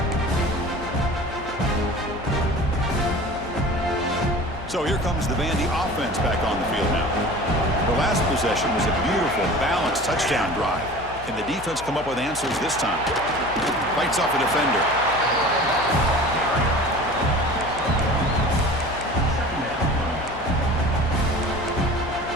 So here comes the Vandy offense back on the field now. The last possession was a beautiful, balanced touchdown drive. Can the defense come up with answers this time? Fights off a defender.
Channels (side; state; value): left; noise; hum, 15 dB below the sound